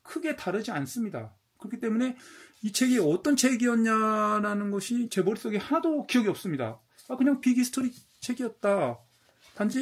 크게 다르지 않습니다. 그렇기 때문에 이 책이 어떤 책이었냐라는 것이 제 머릿속에 하나도 기억이 없습니다. 그냥 빅히스토리 책이었다.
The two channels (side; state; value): both; identical; correlation 1.00